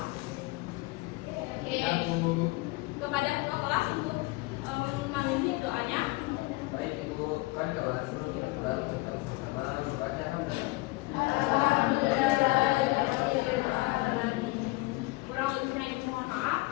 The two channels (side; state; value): right; quieter; 22.2 dB